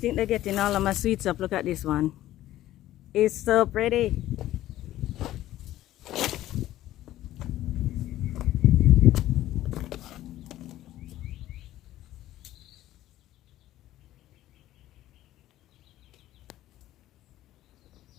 they're getting all of my sweets up. Look at this one. It's so pretty.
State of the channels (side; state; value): right; quieter; 14.3 dB